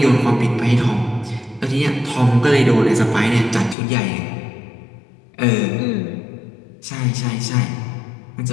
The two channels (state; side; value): drops out; right; at 3.8 s